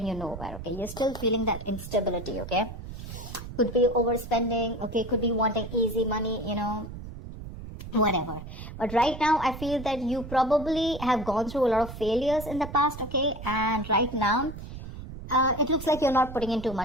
you nowhere, okay? You're still feeling that instability, okay? Could be overspending, okay, could be wanting easy money, whatever. But right now I feel that you probably have gone through a lot of failures in the past, okay, and right now it looks like you're not putting in too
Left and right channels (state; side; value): noise; right; rumble, 11 dB below the sound